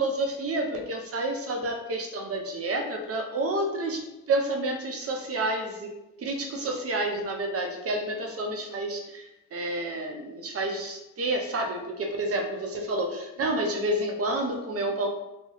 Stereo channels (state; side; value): normal; both; correlation 0.01